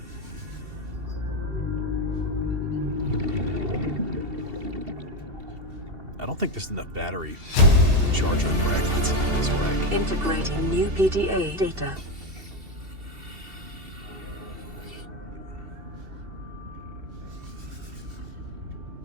I don't think there's enough battery charger fragments in this rack. Integrating new PDA data.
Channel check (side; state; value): left; late; 2.7 ms